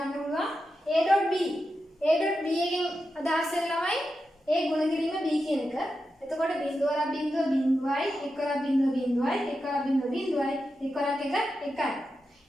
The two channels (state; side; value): normal; both; correlation 0.89